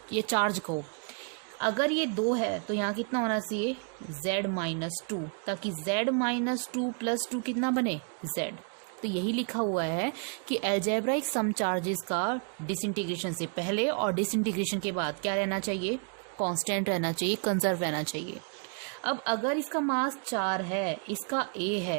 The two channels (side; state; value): left; quieter; 38.8 dB